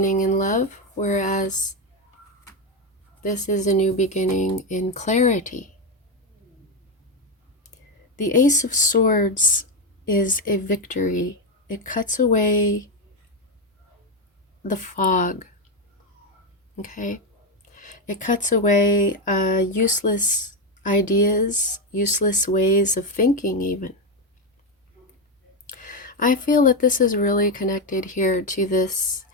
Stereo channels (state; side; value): normal; both; correlation 0.09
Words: in love, whereas this is a new beginning in clarity. The Ace of Swords is a victory. It cuts away the fog. Okay? It cuts away useless ideas, useless ways of thinking even. I feel that this is really connected here to this